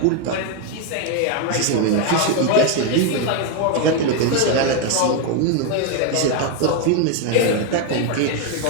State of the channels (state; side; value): different; both; correlation 0.01